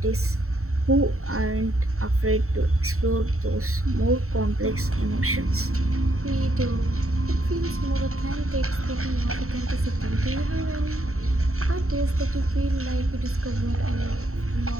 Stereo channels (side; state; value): left; late; 0.63 ms